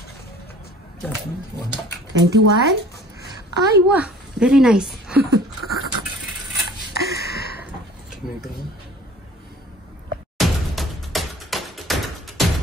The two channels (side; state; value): both; normal; correlation 0.48